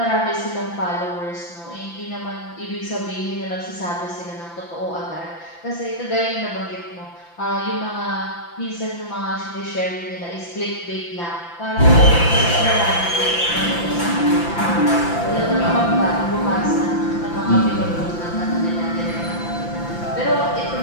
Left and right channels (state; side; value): late; right; 5.9 ms